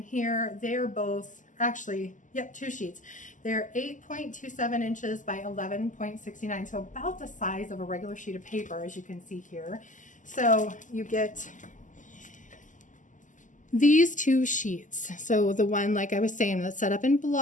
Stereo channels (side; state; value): right; late; 0.37 ms